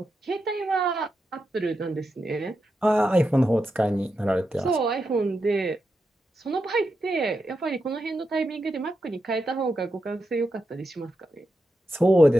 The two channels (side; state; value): both; normal; correlation 0.87